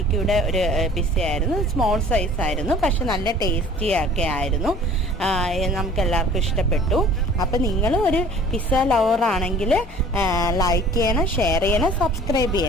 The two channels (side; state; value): both; normal; correlation 0.49